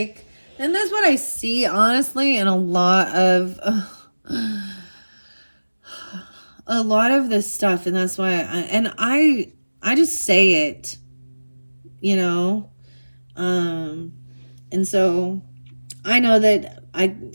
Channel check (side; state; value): both; inverted; correlation -1.00